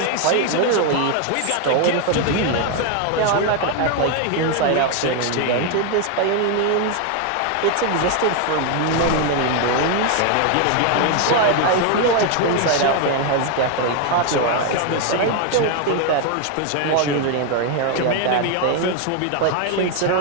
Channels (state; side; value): different; both; correlation 0.01